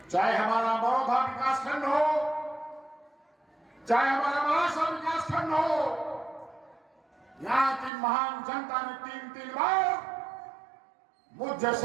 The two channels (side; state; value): left; drops out; at 7.9 s